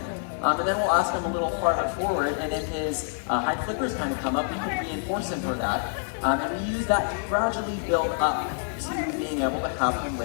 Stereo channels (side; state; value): right; silent; digital silence